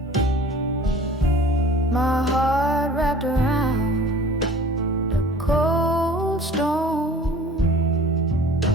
My heart wrapped around the cold stone.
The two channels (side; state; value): both; normal; correlation 0.46